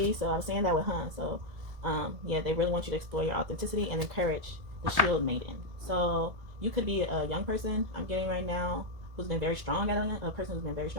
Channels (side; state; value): left; late; 1.7 ms